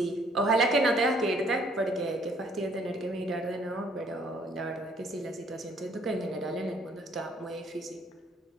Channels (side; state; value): both; normal; correlation 0.62